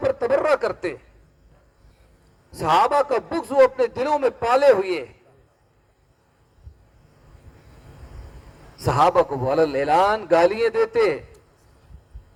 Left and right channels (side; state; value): both; identical; correlation 1.00